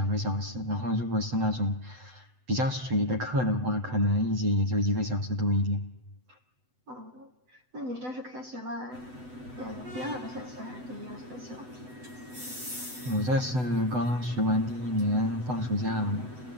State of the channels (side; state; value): left; late; 8.0 ms